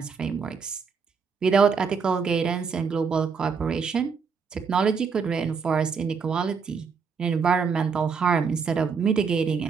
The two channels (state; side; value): quieter; left; 5.7 dB